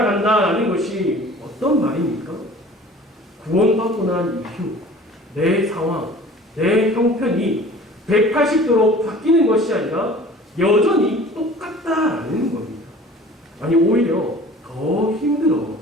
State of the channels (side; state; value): both; normal; correlation 0.45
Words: 것이 어떤 말입니까? 구원받고 난 이후 내 상황, 내 형편이 180도로 바뀌는 것이 아니라 여전히 똑같다라는 겁니다. 아니 오히려 더